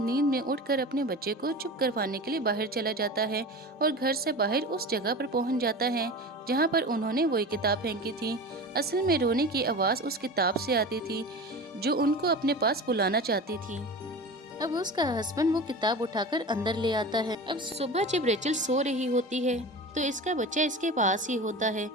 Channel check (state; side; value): normal; both; correlation 0.32